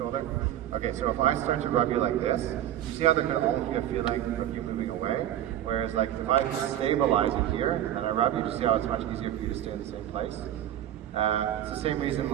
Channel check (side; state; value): left; quieter; 11.9 dB